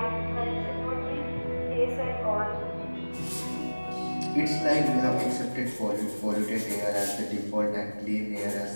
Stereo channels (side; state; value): both; inverted; correlation -1.00